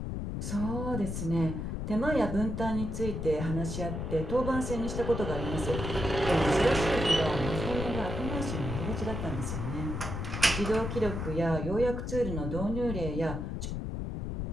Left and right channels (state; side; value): noise; left; rumble, 4 dB below the sound